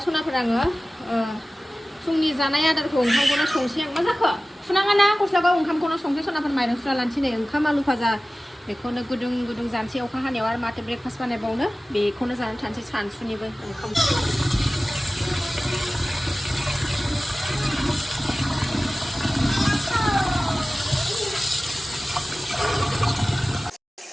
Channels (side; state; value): both; normal; correlation 0.97